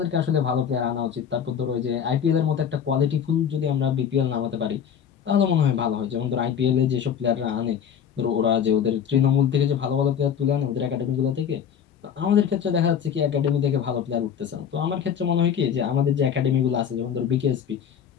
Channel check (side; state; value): right; quieter; 8.2 dB